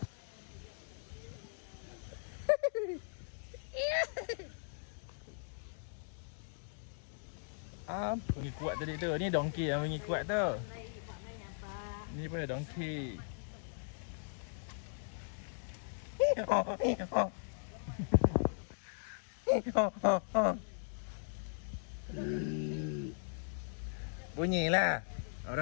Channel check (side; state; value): right; silent; digital silence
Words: Apa ni kuat tadi tu? Ni donkey yang bunyi kuat tu. Ni pun donkey. Bunyilah.